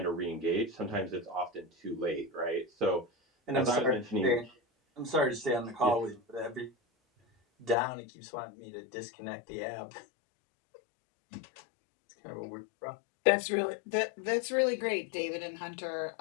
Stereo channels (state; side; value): drops out; right; at 7.8 s